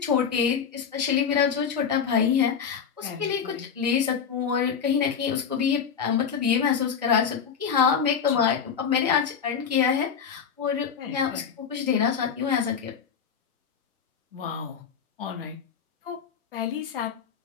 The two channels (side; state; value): right; quieter; 7.0 dB